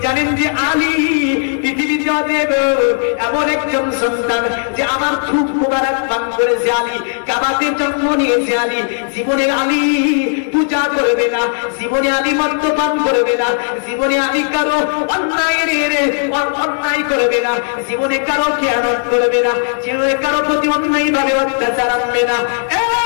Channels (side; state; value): right; silent; digital silence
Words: জানেন যে আলী পৃথিবীতে এমন একজন সন্তান যে আমার থুক মোবারক পান করেছে, আলী কাবাতে জন্ম নিয়েছে, আলী জীবনে আলী পূজা করবে না, জীবনে আলী মদ্যপান করবে না, জীবনে আলী কারো অন্যায় করবে না, জীবনে কারো খেয়ানত করবে না, জীবনে কারো প্রতি অন্যায় ভাবে অত্যাচার আনবে না।